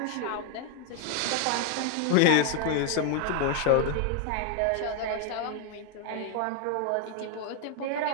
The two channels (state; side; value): different; both; correlation 0.01